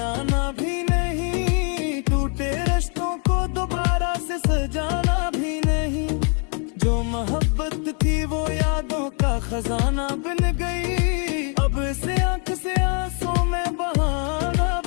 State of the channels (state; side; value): quieter; right; 39.6 dB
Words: फसाना बन गई। अब से आंख से आंसू में बहाना